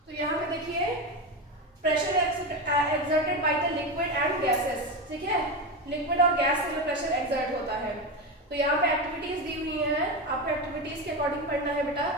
तो यहाँ पे देखिए, pressure exerted by the liquid and gases. ठीक है, लिक्विड और गैस से जो प्रेशर एक्सर्ट होता है, तो यहाँ पे एक्टिविटीज दी हुई हैं, आपको एक्टिविटीज के अकॉर्डिंग पढ़ना है बेटा।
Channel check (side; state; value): both; normal; correlation 0.17